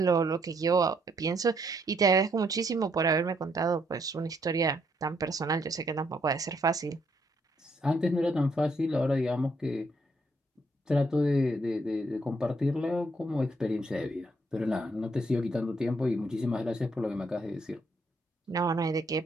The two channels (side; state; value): both; normal; correlation 0.72